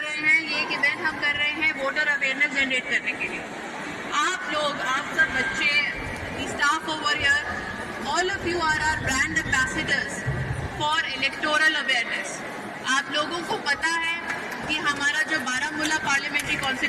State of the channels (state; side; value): identical; both; correlation 1.00